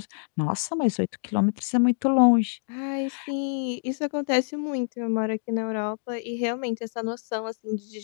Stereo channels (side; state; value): right; silent; digital silence